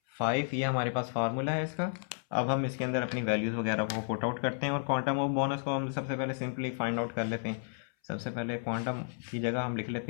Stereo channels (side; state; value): right; silent; 56 dB below the other